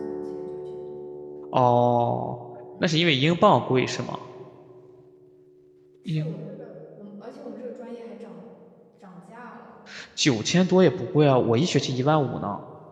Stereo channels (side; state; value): both; identical; correlation 1.00